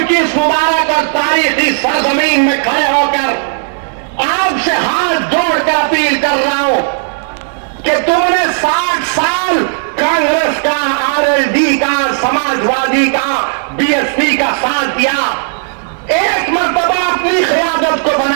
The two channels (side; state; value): left; silent; digital silence